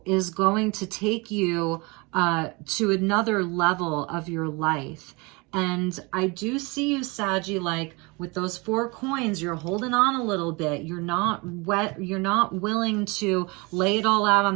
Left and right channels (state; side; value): quieter; left; 27.2 dB